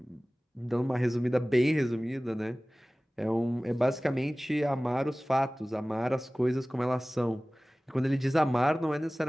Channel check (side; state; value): both; normal; correlation 0.98